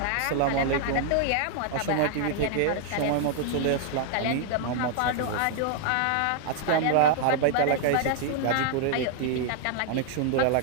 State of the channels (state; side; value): different; both; correlation -0.01